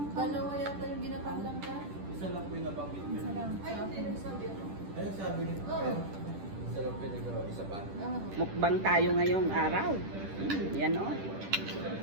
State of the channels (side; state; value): left; late; 10 ms